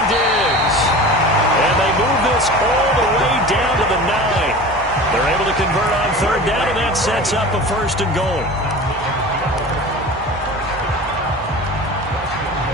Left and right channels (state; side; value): noise; left; hum, 16 dB below the sound